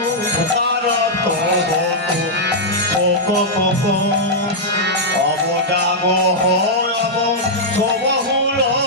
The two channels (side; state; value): both; normal; correlation -0.07